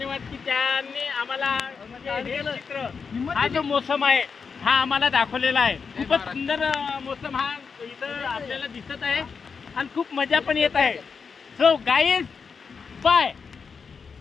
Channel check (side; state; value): right; quieter; 5.6 dB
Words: की त्यांनी आम्हाला हे चित्र हा जो मोसम आहे हा आम्हाला दाखवलेला आहे। खूपच सुंदर मोसम हा इथं आपल्याला दिसत आहे आणि खूप मजा पण येत आहे। So guys bye.